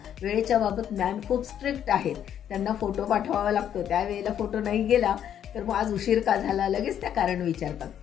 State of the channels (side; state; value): right; quieter; 9.7 dB